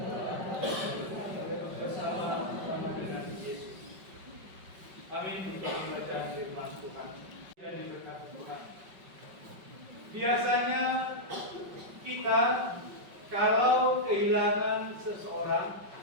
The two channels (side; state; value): left; late; 5.3 ms